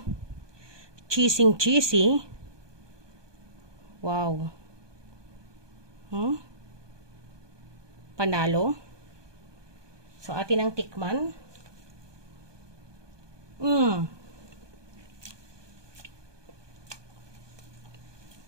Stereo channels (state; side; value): late; left; 1.2 ms